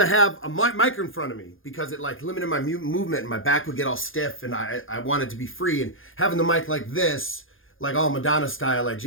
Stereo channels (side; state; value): right; late; 0.59 ms